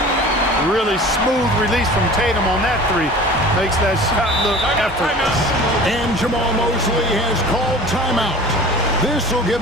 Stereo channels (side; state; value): both; normal; correlation 0.42